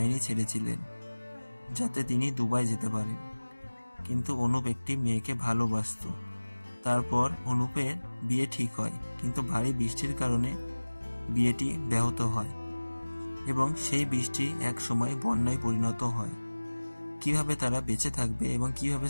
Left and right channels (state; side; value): inverted; both; correlation -1.00